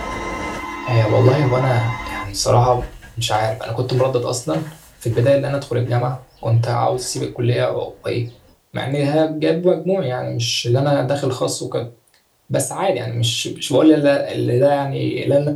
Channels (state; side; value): identical; both; correlation 1.00